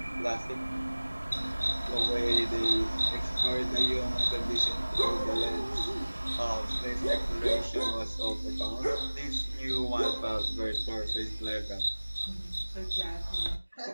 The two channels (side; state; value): both; inverted; correlation -1.00